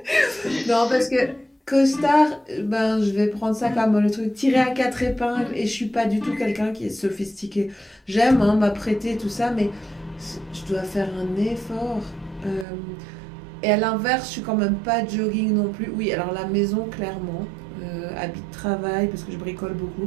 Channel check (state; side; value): drops out; left; at 12.7 s